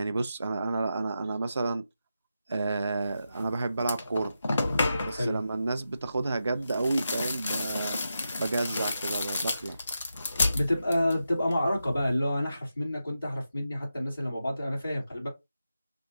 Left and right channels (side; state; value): both; inverted; correlation -0.88